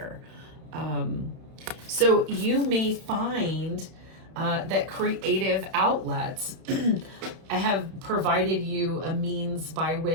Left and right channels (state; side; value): late; left; 31 ms